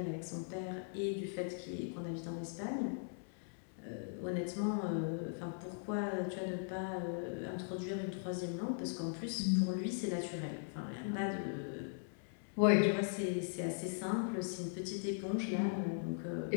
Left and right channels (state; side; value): silent; right; digital silence